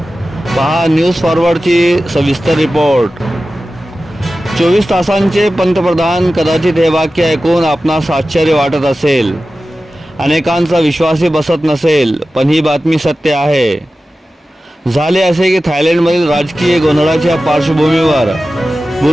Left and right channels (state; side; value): normal; both; correlation 0.95